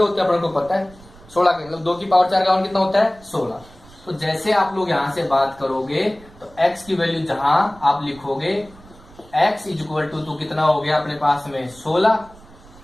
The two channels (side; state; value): right; noise; rumble, 23 dB below the sound